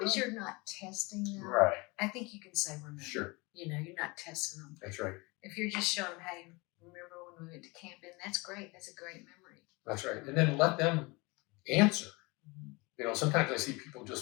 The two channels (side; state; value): right; quieter; 25.7 dB